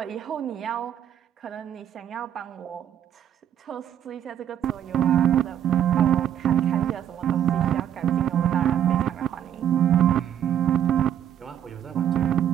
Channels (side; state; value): left; quieter; 10.0 dB